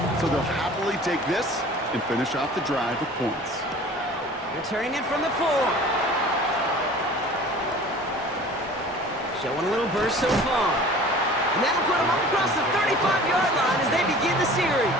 So they'll happily take this and finish off the drive with points. Returning it from the 4. Showing a little burst so far. And that'll put them up across the 35-yard line as they begin the series.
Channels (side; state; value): both; normal; correlation 0.44